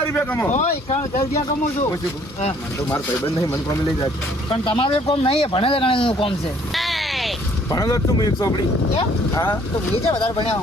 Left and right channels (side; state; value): both; normal; correlation 0.60